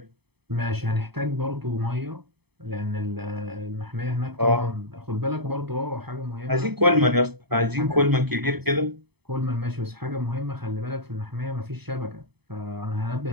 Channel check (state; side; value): late; left; 0.98 ms